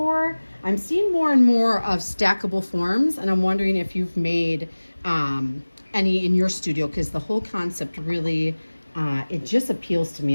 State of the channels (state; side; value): inverted; both; correlation -1.00